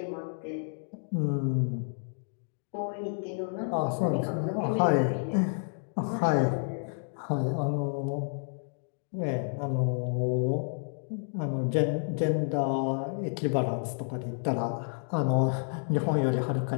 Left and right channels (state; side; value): silent; right; digital silence